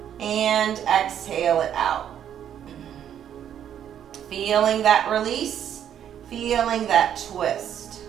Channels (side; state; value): left; quieter; 9.7 dB